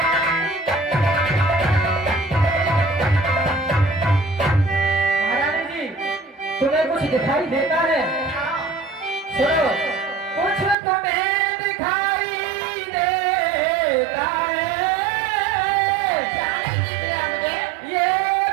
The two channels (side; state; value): left; drops out; at 10.8 s